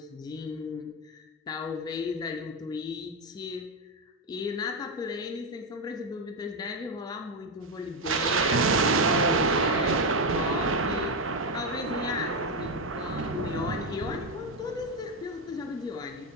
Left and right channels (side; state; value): both; normal; correlation 0.08